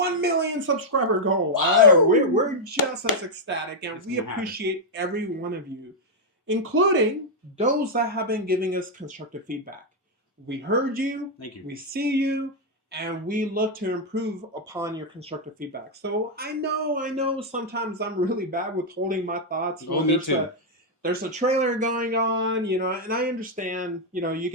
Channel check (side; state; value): both; normal; correlation -0.02